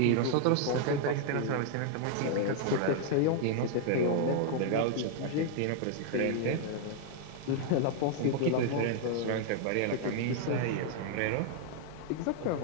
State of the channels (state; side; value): different; both; correlation 0.00